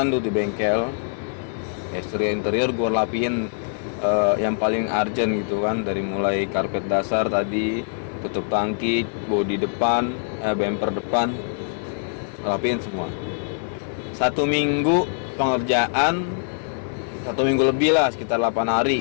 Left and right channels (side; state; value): right; silent; 56 dB below the other